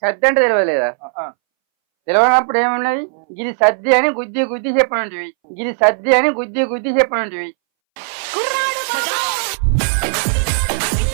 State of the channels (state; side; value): silent; left; 65 dB below the other